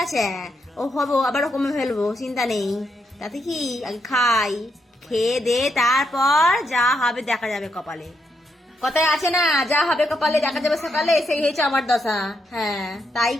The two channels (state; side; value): normal; both; correlation 0.80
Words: আছে, ও হবো আবার কমে ফেলবো, চিন্তা নেই, তাতে কি, আগে খাই, খেয়ে দে তারপর যা হবে দেখা যাবে কপালে, কথায় আছে না, যা হবে কপালে দেখা যাবে সকালে, সেই হয়েছে আমার দশা। হ্যাঁ, তাই